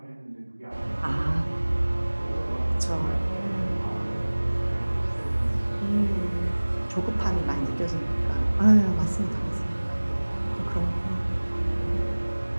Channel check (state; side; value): inverted; both; correlation -1.00